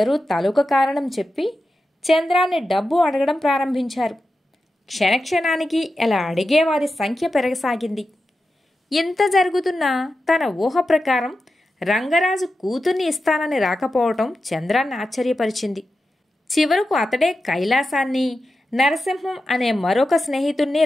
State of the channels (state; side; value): normal; both; correlation 0.91